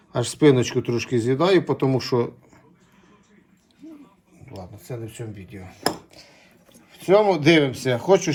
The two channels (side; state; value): both; identical; correlation 1.00